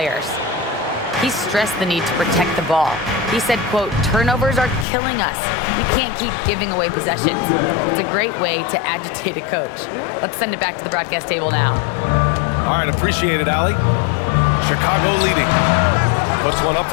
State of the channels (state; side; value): drops out; right; at 4.9 s